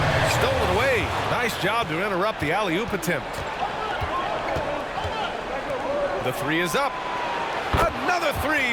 Stolen away. Nice job to interrupt the alley-oop attempt. The three is up. Another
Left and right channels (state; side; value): identical; both; correlation 1.00